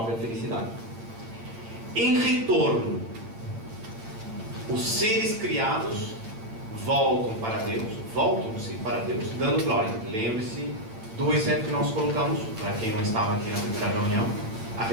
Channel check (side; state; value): left; late; 9.0 ms